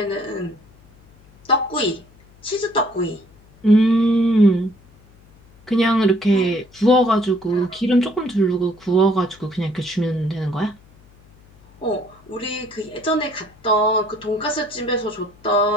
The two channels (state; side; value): noise; left; hum, 27 dB below the sound